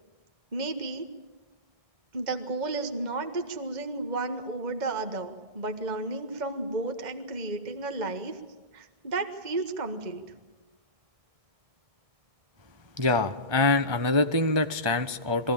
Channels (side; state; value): left; late; 1.3 ms